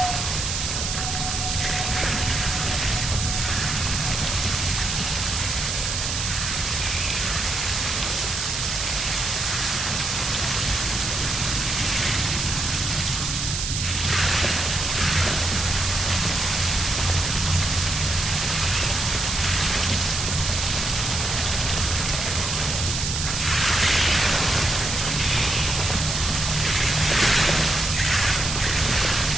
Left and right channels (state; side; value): noise; right; hiss, 2 dB below the sound